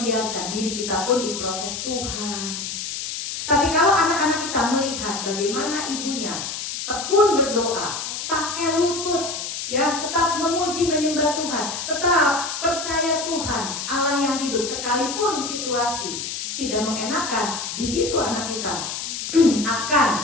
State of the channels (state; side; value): noise; left; hiss, 5 dB below the sound